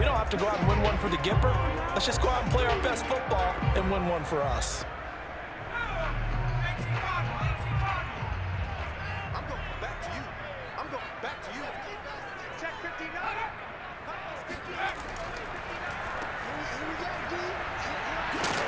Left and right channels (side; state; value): both; identical; correlation 1.00